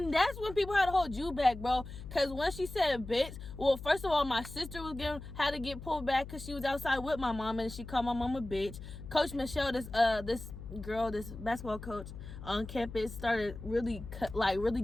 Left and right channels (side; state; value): left; noise; hum, 12 dB below the sound